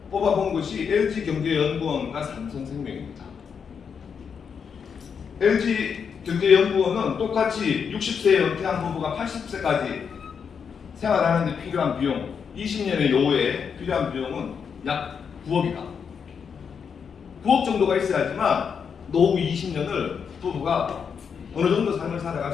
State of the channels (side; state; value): right; quieter; 6.6 dB